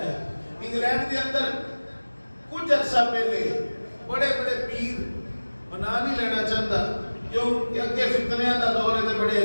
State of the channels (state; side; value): inverted; both; correlation -1.00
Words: ہے. انگلینڈ کے اندر کچھ عرصہ پہلے بڑے بڑے پیر بنا نہیں لینا چاہتا کیوں کہ اگے فتنیاں دا دور ہے تے بڑے